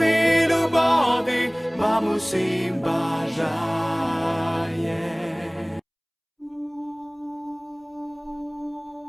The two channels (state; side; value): identical; both; correlation 1.00